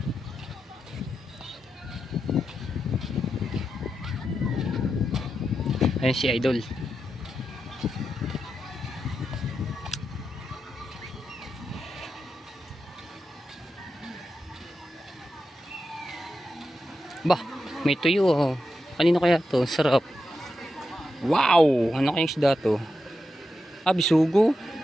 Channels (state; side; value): normal; both; correlation 0.88